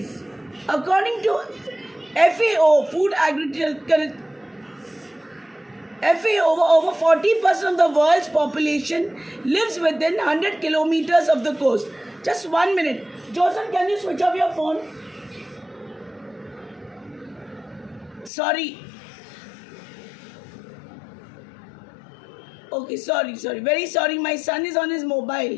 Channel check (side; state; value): right; drops out; at 18.3 s